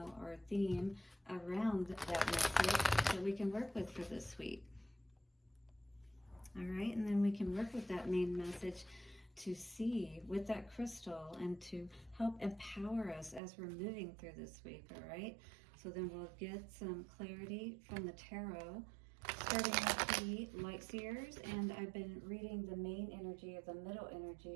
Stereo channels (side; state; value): left; drops out; at 13.4 s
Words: theme around that message that we can work with for this week. All right, and then we can work with that main message to see with that crystal and to help empower us as we're moving through this week. All right, so then we'll get some clarity from the tarot, starting with the light seers. And I've been reading the main energy of the middle